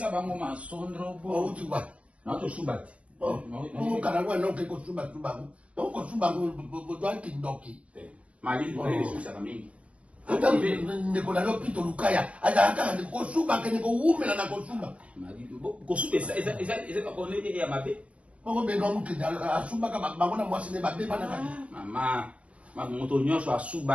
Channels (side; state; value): left; late; 0.063 ms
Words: bango masondro bo. Utuba. Na to subati. Kana kwa no ke ko suba tuba. To ko suba go dwa kindoki. Mali ko le susa kamingi. Ata ndiko na lopito lukaya. Aka ko suba ke ko umela na ko suba. Mali ko suba eza ko ne ya mabe. Bongo be no mukida asuba ka bangona mwasi ne babe bana ka. Mama, moto nyonso